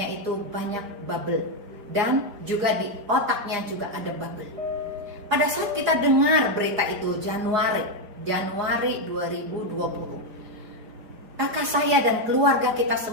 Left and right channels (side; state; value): left; late; 4.9 ms